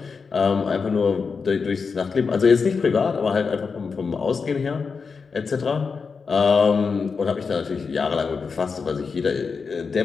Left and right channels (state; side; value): quieter; right; 5.2 dB